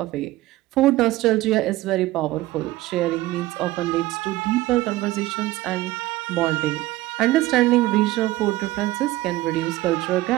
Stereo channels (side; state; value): left; quieter; 17.4 dB